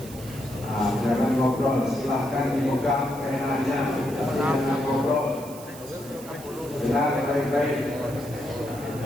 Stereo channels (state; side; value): noise; right; hiss, 17 dB below the sound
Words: Jangan ngobrol, silahkan dipegang penanya, jangan ngobrol. Dengar baik-baik.